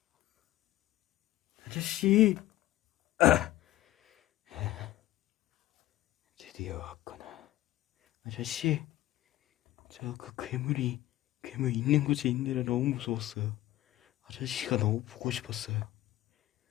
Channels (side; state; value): right; quieter; 15.4 dB